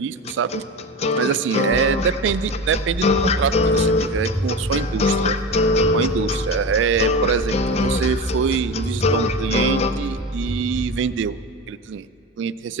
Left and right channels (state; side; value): normal; both; correlation 0.26